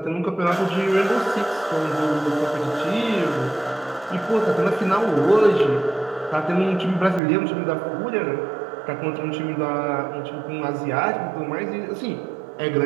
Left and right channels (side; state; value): left; drops out; at 7.2 s